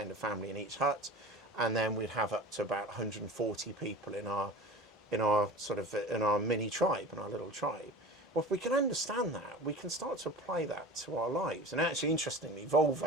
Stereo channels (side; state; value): both; normal; correlation 0.35